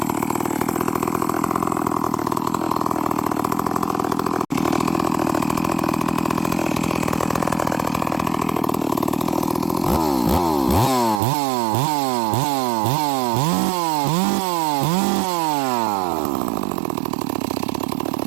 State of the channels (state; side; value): drops out; left; at 11.2 s